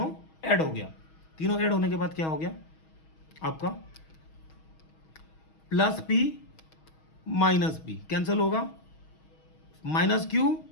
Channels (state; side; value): late; right; 6.3 ms